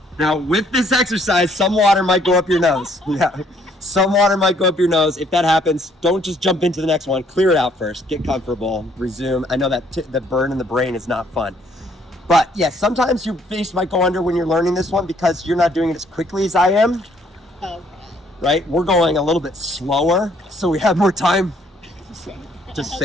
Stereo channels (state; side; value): normal; both; correlation 0.65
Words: Now, with this exercise, some water might go up your nose. Yeah. Some water might go up your nose. If that happens, don't just jump into the next one. Clear it out first. Get comfortable. Resume. I know that the burn in the brain is not fun. But yes, sometimes your face might go under when you're learning this one because you're not doing it as quickly as I am. Okay. Right? We're going a little bit slower, so we have more time to